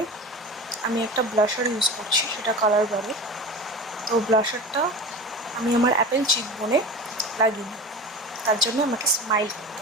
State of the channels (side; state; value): both; normal; correlation 0.31